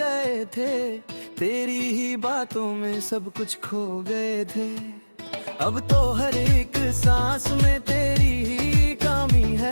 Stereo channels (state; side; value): inverted; both; correlation -1.00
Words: थे, तेरी ही बातों में सब कुछ खो गए थे। अब तो हर एक सांस में तेरी ही कमी